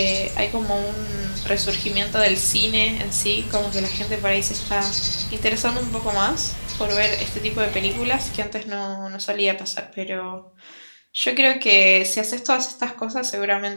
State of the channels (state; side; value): inverted; both; correlation -1.00